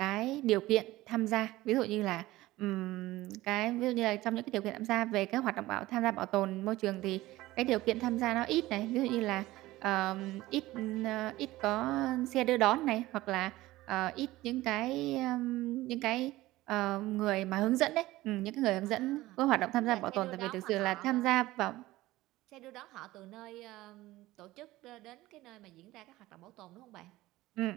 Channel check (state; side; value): quieter; left; 17.6 dB